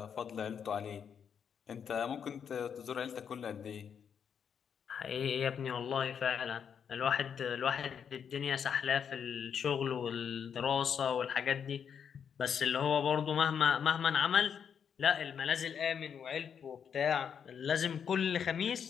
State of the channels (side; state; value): right; quieter; 7.5 dB